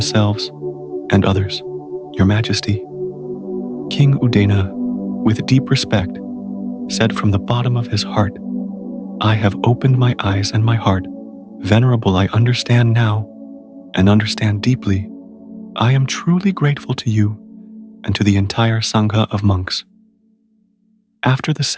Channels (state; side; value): identical; both; correlation 1.00